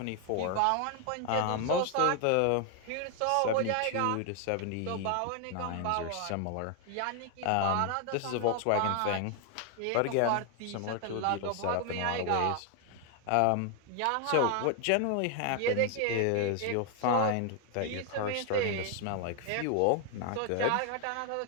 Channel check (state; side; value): different; both; correlation 0.00